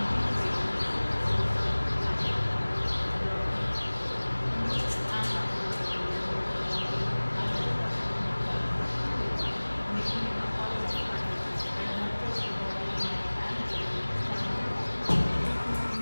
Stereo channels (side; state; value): both; inverted; correlation -1.00